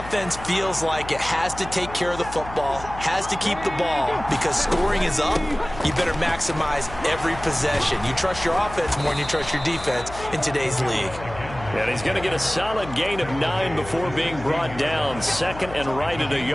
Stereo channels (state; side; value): noise; left; hum, 13 dB below the sound